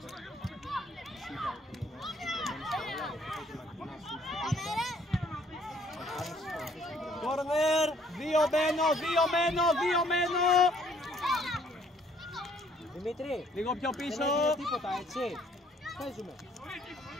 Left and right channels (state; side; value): normal; both; correlation 0.63